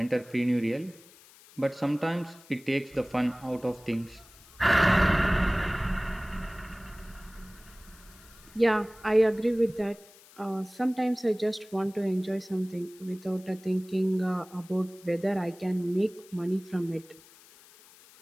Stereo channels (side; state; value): left; noise; hiss, 24 dB below the sound